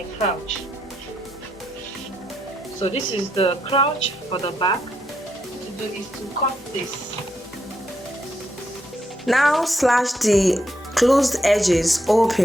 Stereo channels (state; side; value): normal; both; correlation 0.79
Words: crouch. So this is the crouch for the back. What to do is to cut this. Now slash the closed edges